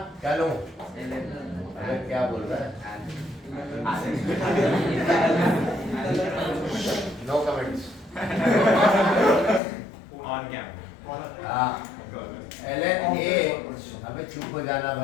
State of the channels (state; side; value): drops out; right; at 9.6 s